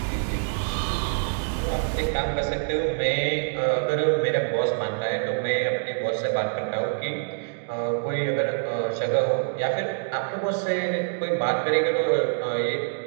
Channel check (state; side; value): silent; left; digital silence